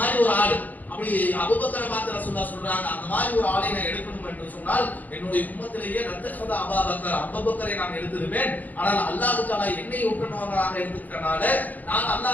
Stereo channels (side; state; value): right; late; 0.081 ms